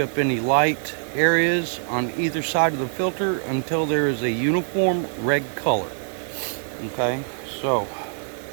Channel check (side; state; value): left; silent; 58 dB below the other